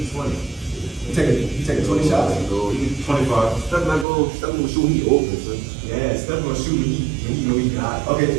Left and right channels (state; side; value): drops out; left; at 4.0 s